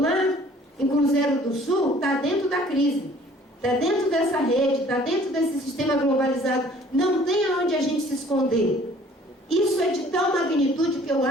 em Cruzeiro do Sul, está dentro da crise. Está dentro dessa rede, está dentro desse sistema globalizado. Não tem aonde a gente se esconder. Isso é de tal magnitude que eu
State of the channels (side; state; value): both; normal; correlation 0.54